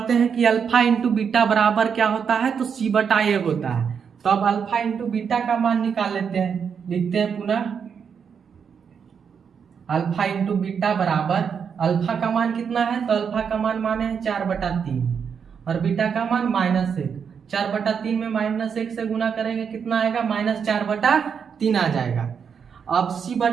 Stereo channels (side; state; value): left; quieter; 6.8 dB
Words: हैं कि अल्फा इंटू बीटा बराबर क्या होता है, तो c/a होता है। तो अब अल्फा इंटू बीटा का मान निकाल लेते हैं, लिखते हैं पुनः अल्फा इंटू बीटा बराबर, अल्फा का मान कितना है, तो अल्फा का मान माने है 4/3, और बीटा का मान -1। 4/3 में -1 से गुना करेंगे कितना आएगा, -4/3 आ जाएगा। अब